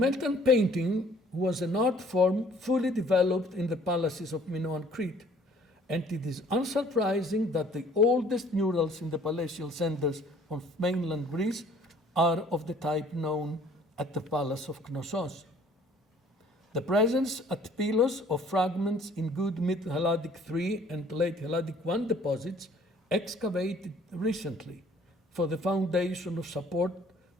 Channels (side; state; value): both; normal; correlation 0.56